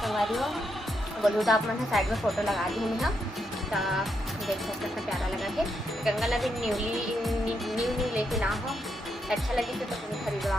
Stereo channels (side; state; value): both; normal; correlation 0.80